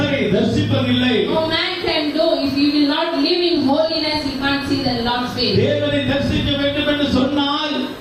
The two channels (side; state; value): both; identical; correlation 1.00